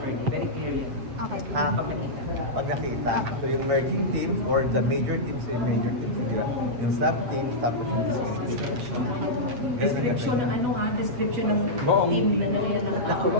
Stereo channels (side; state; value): left; late; 8.4 ms